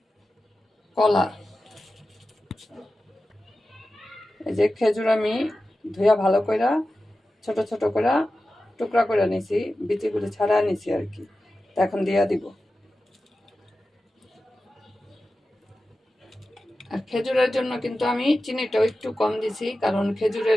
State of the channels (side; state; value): both; normal; correlation 0.93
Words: কলা। এই যে খেজুর আমি ধুয়া ভালো করে ছোট ছোট করে টুকরা করে নিছি, বিচিগুলো ছাড়া নিছি আর কি। এখন দিয়া দিব। আর খেজুরের জন্য কিন্তু আমি চিনিটাও একটু কম দিছি, কারণ